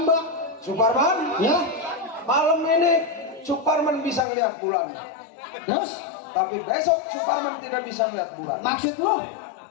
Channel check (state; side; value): drops out; right; at 4.2 s